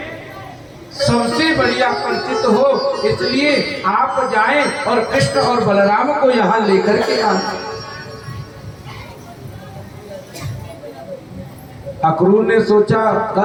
सबसे बढ़िया परिचित हो, इसलिए आप जाएं और कृष्ण और बलराम को यहाँ लेकर के आए। अक्रूर ने सोचा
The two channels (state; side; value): identical; both; correlation 1.00